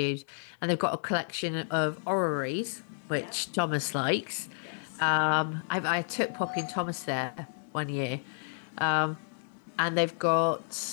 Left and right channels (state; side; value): silent; right; digital silence